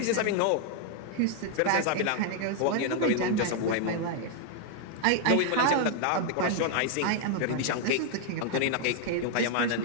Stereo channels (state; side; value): different; both; correlation 0.00